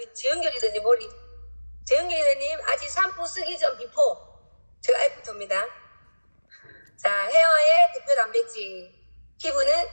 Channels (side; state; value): both; inverted; correlation -1.00